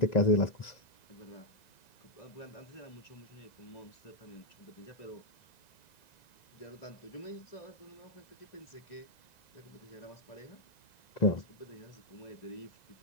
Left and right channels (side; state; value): right; late; 1.9 ms